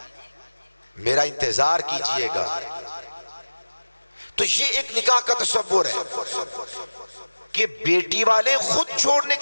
میرا انتظار کیجئے گا۔ تو یہ ایک نکاح کا تصور ہے کہ بیٹی والے خود چھوڑنے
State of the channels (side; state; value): both; inverted; correlation -1.00